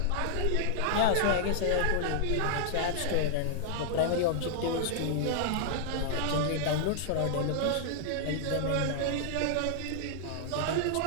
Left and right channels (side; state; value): both; different; correlation -0.01